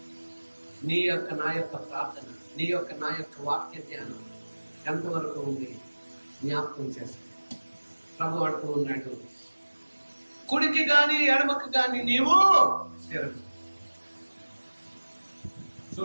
నీ యొక్క నా యొక్క ప్రార్థన, నీ యొక్క నా యొక్క వాక్య ధ్యానం ఎంతవరకు ఉంది జ్ఞాపకం చేస్తాను. ప్రభు అంటూ ఉన్నాడు, కుడికి గాని ఎడమకు గాని నీవు తిరగ.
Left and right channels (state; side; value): inverted; both; correlation -1.00